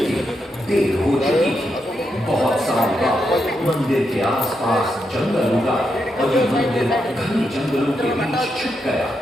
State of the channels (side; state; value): both; normal; correlation 0.83